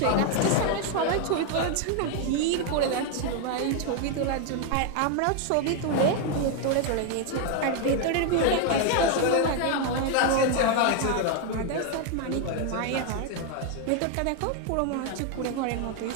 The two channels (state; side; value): different; both; correlation 0.01